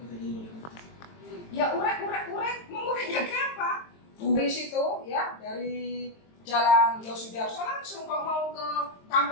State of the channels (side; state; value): right; late; 23 ms